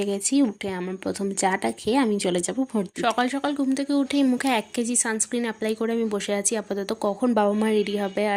গেছি। উঠে আমার প্রথম চাটা খেয়ে আমি চলে যাব ভোট দিতে। সকাল সকাল ঘুম থেকে উঠেই মুখে 1 কেজি সানস্ক্রিন অ্যাপ্লাই করে আমি বসে আছি আপাতত, কখন বাবা মা রেডি হবে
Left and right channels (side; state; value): both; identical; correlation 1.00